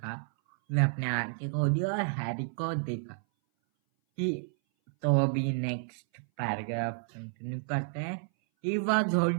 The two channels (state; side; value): silent; left; 57 dB below the other